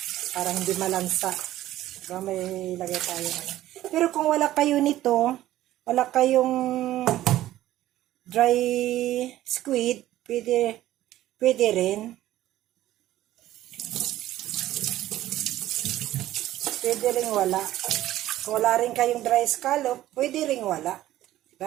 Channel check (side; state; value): left; quieter; 14.3 dB